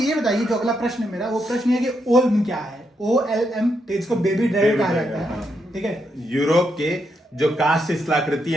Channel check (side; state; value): both; normal; correlation 0.80